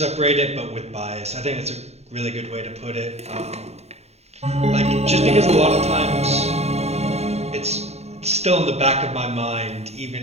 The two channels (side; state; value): left; late; 0.31 ms